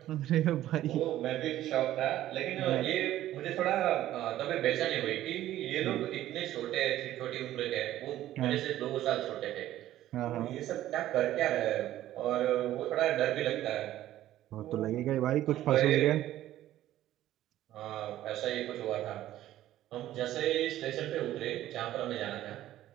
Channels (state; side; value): quieter; left; 13.6 dB